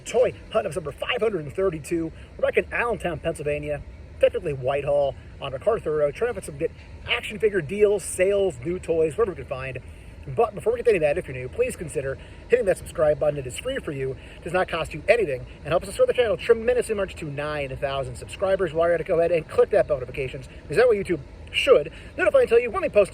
hunt episode number 532. We're back in Allentown, Pennsylvania, technically Whitehall, on MacArthur Road, trying to find some good action figure deals, sales, new toys, whatever we can find. But before we get to any of that, if you're new, please consider hitting that subscribe button. It is free for you, does not cost you anything, and helps us grow the channel tremendously much to 9,000 subscribers. While you're at it, go ahead and click that bell notifications, because that way YouTube should notify and tell you when we post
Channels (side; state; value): both; identical; correlation 1.00